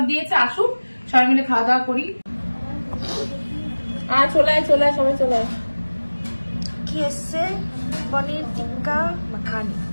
দিয়েছে, আসুক সবাই মিলে খাওয়া দাওয়া করি। আর চলে আয় সবাই চলে আয়। কি এসছে? পনির টিক্কা মাখানি।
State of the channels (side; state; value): both; inverted; correlation -1.00